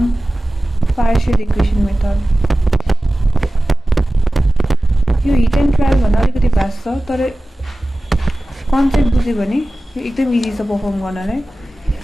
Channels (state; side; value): normal; both; correlation 0.96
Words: partial equation method. यो हिट एन्ड ट्रायल भन्दा अलिकति भास्ट छ तर कन्सेप्ट बुझ्यो भने यो एकदम इजी छ परफर्म गर्नलाई